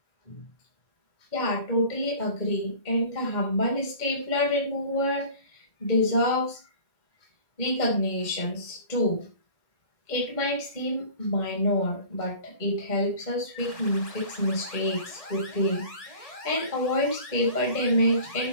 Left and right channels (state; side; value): late; right; 1.6 ms